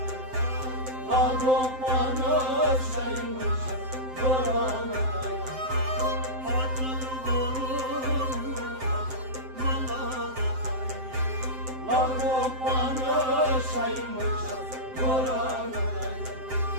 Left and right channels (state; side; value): late; left; 7.7 ms